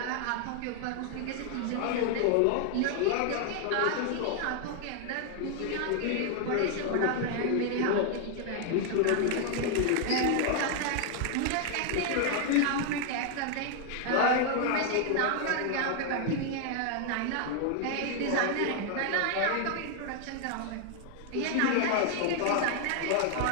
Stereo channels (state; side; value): different; both; correlation 0.00